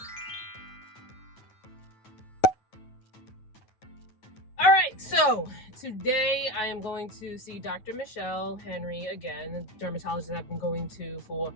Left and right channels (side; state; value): right; late; 9.3 ms